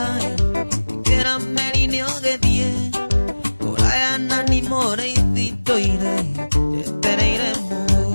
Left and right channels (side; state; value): both; inverted; correlation -1.00